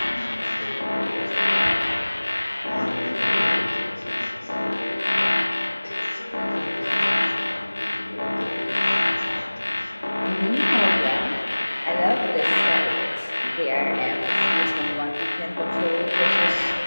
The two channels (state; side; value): inverted; both; correlation -1.00